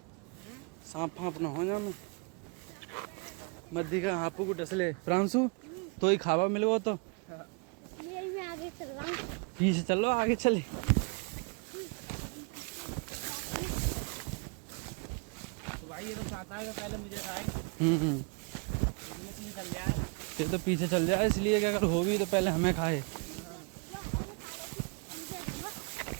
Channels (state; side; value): quieter; left; 34.6 dB